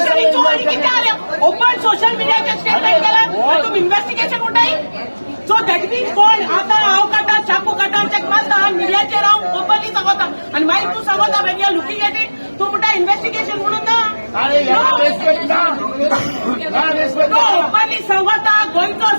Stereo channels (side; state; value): both; inverted; correlation -1.00